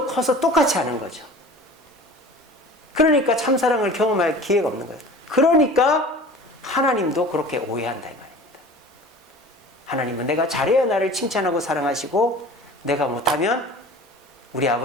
커서 똑같이 하는 거죠. 그러니까 참사랑을 경험할 기회가 없는 거예요. 그러니까 하나님도 그렇게 오해한다 이 말입니다. 하나님은 내가 잘해야 나를 칭찬하고 사랑하시고, 내가 못하면 우리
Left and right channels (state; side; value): normal; both; correlation 0.41